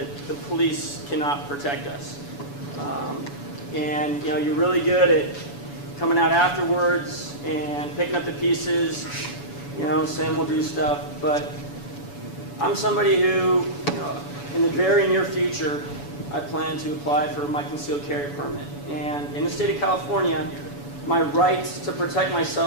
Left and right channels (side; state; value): right; late; 7.0 ms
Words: the police cannot protect us. And, you know, you're really good at coming out afterwards and picking up the pieces, you know, saying we'll do stuff. But I'm somebody who, you know, in the very near future, I plan to apply for my concealed carry permit. And in the state of California, my right to protect